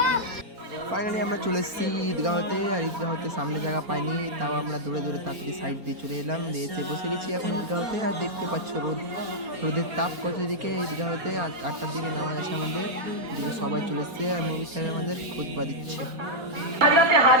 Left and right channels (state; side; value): late; left; 4.3 ms